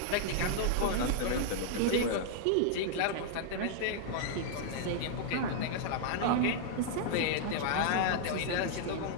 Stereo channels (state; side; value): different; both; correlation -0.01